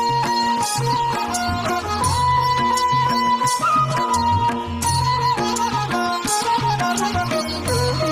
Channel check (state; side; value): identical; both; correlation 1.00